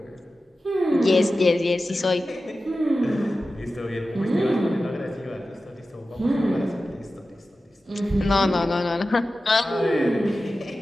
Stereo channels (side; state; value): both; normal; correlation 0.94